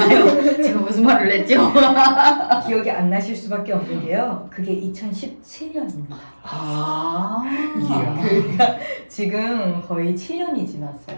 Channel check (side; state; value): both; inverted; correlation -1.00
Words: 제가 무슨 말을 했죠? 기억이 안 나실 수밖에 없는 게요. 그게 2017년입니다. 그러니까 지금 거의 7년이 지났어요.